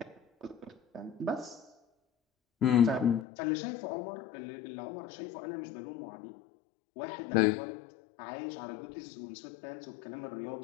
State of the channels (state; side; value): drops out; right; at 3.2 s